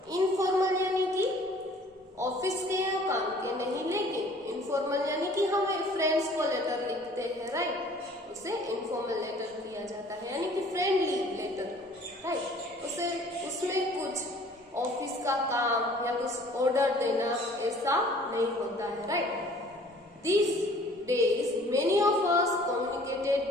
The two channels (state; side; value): normal; both; correlation 0.53